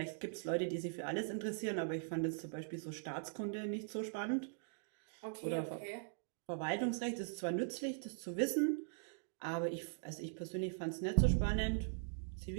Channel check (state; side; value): silent; left; digital silence